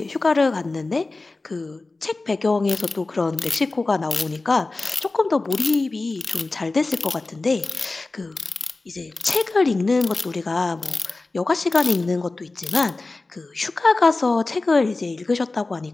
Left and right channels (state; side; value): quieter; right; 3.4 dB